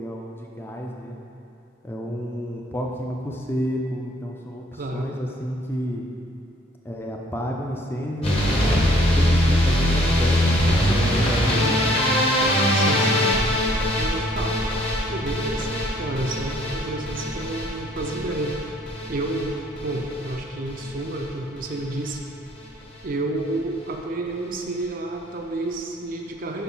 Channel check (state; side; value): normal; both; correlation 0.61